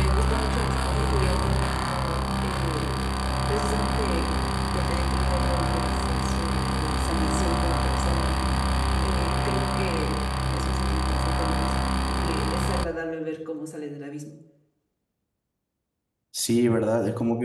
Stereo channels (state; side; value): identical; both; correlation 1.00